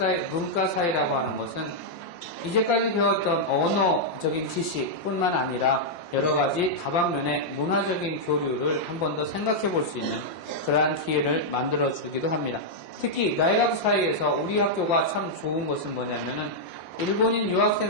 문과 사이라고 하는 것은 이제까지 배웠던 언어적인 지식뿐만 아니라 여러 가지 다방면의 문화적인 교류를 한 번 더 생각해 볼 수 있는 그러한 기회를 만들어 주기도 합니다. 특히 나이가쿠 사이에서 우리 학교가 참 좋은 것은 뭐냐면은 일본인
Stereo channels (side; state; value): right; late; 5.7 ms